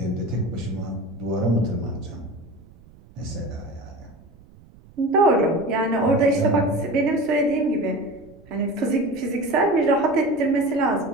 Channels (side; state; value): right; noise; rumble, 24 dB below the sound